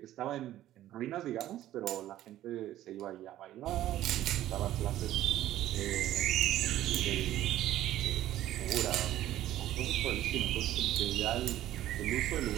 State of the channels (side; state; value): left; quieter; 13.5 dB